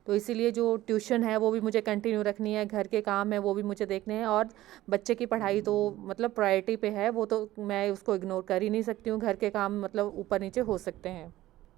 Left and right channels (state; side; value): quieter; left; 15.5 dB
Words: तो इसीलिए जो ट्यूशन है वो भी मुझे कंटिन्यू रखनी है, घर के काम है वो भी मुझे देखने हैं, और बच्चे की पढ़ाई तो मतलब प्रायोरिटी पे है, वो तो मैं उसको इग्नोर कर ही नहीं सकती हूँ। घर के काम मतलब ऊपर नीचे हो सकते हैं।